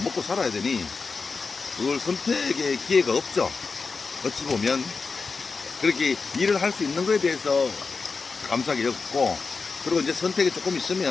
살아야 되니 그걸 선택의 기회가 없죠. 어찌 보면 그렇게 일을 할 수 있는 거에 대해서 감사하게 여겼고, 그리고 이제 선택이 조금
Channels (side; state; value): right; quieter; 4.6 dB